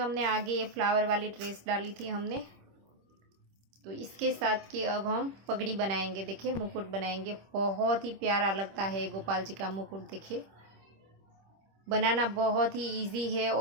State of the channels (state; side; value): late; left; 26 ms